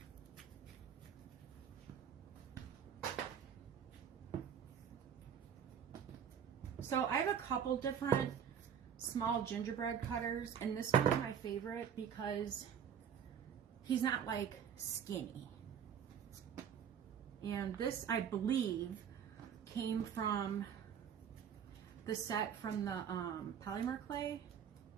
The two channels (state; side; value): quieter; left; 8.1 dB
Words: So I have a couple different small gingerbread cutters, and this one's my favorite because he's not like skinny. And this, I believe, came from the set from the polymer clay